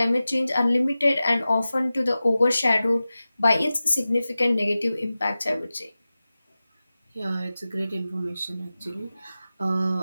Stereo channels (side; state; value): both; inverted; correlation -0.95